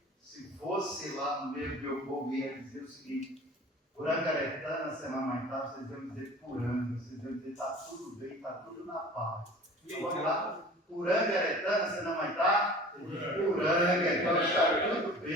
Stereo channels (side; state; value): both; normal; correlation 0.43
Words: Se fosse lá no meio do meu povo, ia dizer o seguinte: Purangaretana, Semamaitar, vocês iam dizer Puranga, vocês iam dizer está tudo bem, está tudo na paz. Então vamos lá? Purangaretana, Semamaitar, Puranga, então está tudo